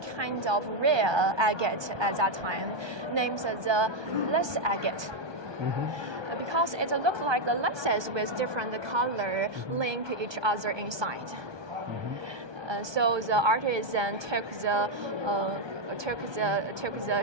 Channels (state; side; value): late; left; 1.2 ms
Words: kind of rare agate at that time, named the lace agate. Because it looks like the laces with different color link each other inside. So the artisan took the